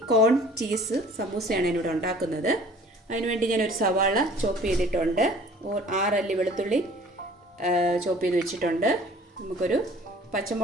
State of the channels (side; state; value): both; normal; correlation 0.50